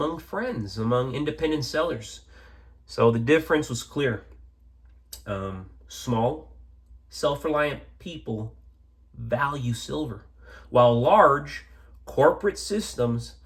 friends, among independent sellers. So the difference was clear. Small, self-reliant people value silver, while large corporate systems,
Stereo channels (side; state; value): both; identical; correlation 1.00